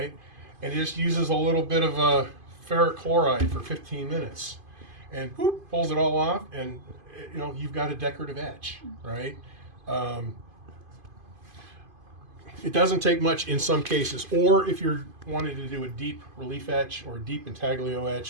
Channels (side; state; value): left; late; 2.5 ms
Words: and he just uses a little bit of ferric chloride for 15 minutes, and boop, pulls it all off, and you've got a decorative etch, right? It doesn't take much in some cases, or if you're wanting to do a deep relief etch or a deep intaglio